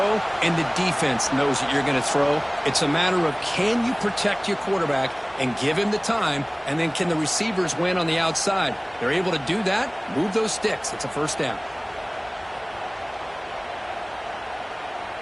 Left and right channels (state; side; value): identical; both; correlation 1.00